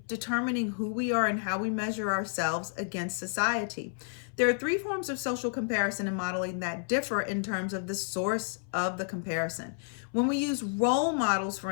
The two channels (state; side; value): silent; right; 57 dB below the other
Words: determining who we are and how we measure ourselves against society. There are three forms of social comparison and modeling that differ in terms of the source of the comparison. When we use role models, for